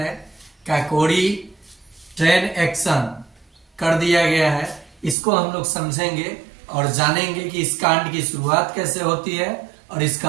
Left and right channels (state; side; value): drops out; left; at 5.2 s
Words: काकोरी ट्रेन एक्शन कर दिया गया है। इसको हम लोग समझेंगे और जानेंगे कि इस कांड की शुरुआत कैसे होती है और